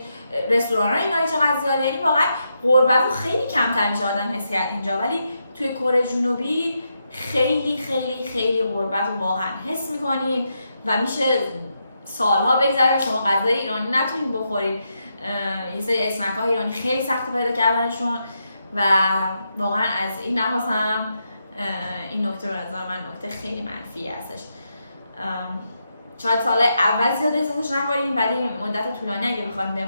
رستوران‌های ایرانی چقدر زیاده. یعنی واقعا غربت رو خیلی کمتر میشه آدم حس کرد اینجا، ولی توی کره جنوبی خیلی خیلی خیلی غربت رو واقعا حس می‌کنید و میشه سالها بگذره شما غذای ایرانی نتونید بخورید. یه سری اسنک‌های ایرانی خیلی سخت پیدا کردنشون و واقعا از این لحاظ هم این نکته رو نظر من نکته خیلی منفی هستش. شاید سال اول زیاد احساسش نکنید، ولی مدت طولانی اگه بخواید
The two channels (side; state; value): both; inverted; correlation -0.83